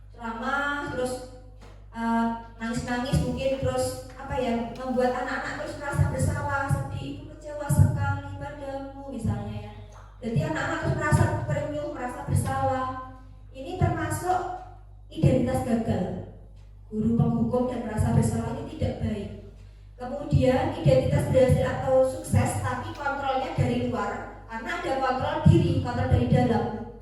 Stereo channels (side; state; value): both; identical; correlation 1.00